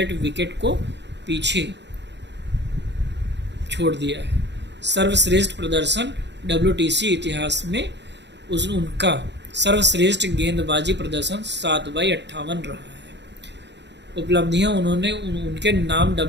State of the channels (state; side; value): late; left; 0.51 ms